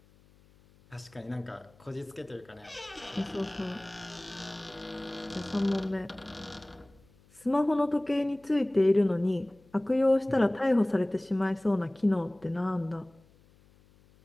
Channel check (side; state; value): left; noise; hum, 29 dB below the sound